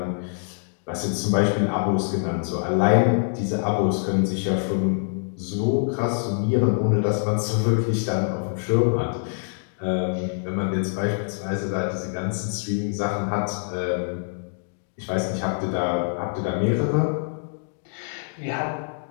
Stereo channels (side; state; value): right; silent; digital silence